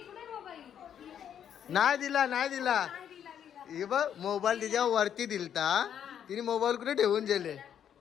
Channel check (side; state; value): right; quieter; 9.1 dB